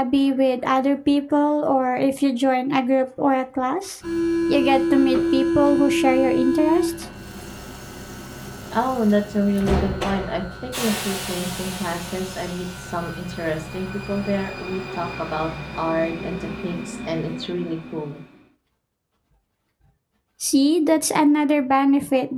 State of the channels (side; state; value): both; identical; correlation 1.00